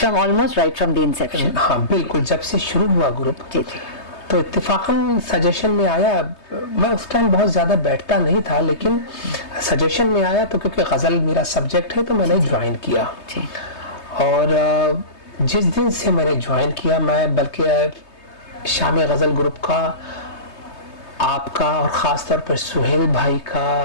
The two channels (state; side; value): late; right; 3.2 ms